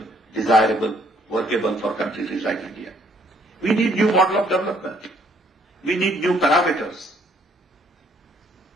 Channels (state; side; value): normal; both; correlation 0.65